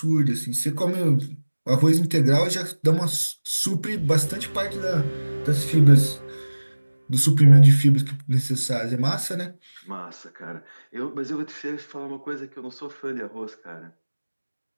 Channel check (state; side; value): inverted; both; correlation -1.00